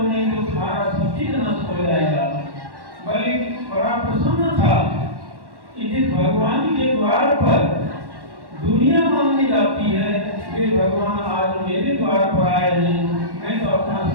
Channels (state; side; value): late; left; 1.1 ms